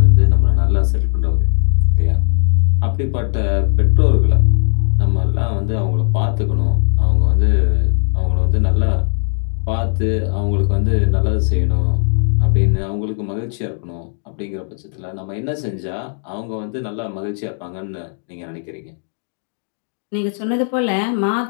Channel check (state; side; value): silent; right; digital silence